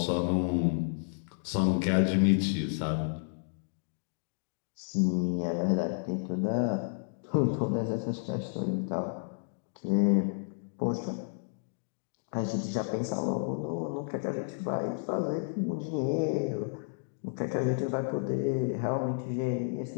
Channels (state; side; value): silent; right; digital silence